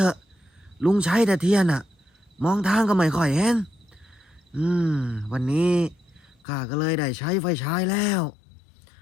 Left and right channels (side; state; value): right; drops out; at 6.4 s